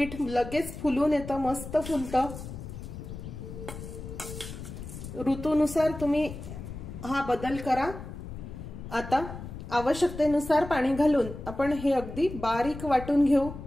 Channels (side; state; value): left; noise; rumble, 10 dB below the sound